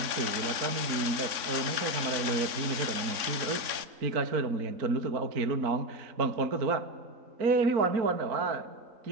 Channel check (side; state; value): left; late; 3.7 ms